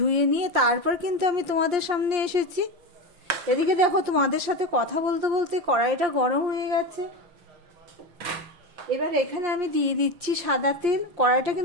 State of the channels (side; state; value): left; late; 5.7 ms